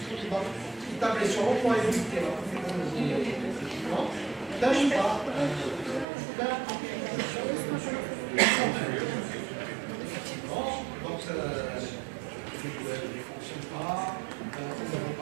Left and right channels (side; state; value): left; drops out; at 6.1 s